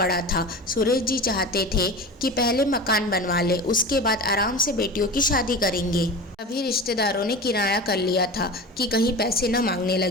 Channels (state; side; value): normal; both; correlation 0.31